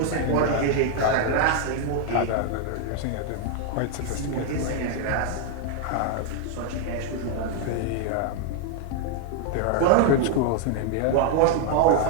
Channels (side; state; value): both; different; correlation 0.00